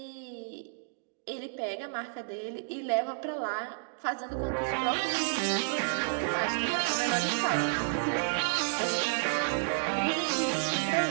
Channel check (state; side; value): silent; left; digital silence